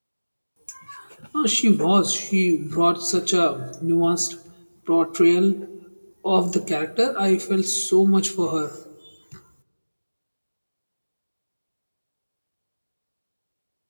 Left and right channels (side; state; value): both; inverted; correlation -1.00